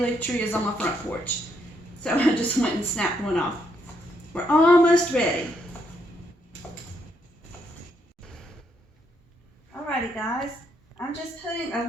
tree is on my front porch. So I just went and snapped one off. We're almost ready. Alrighty guys. I'm just putting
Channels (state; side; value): normal; both; correlation 0.75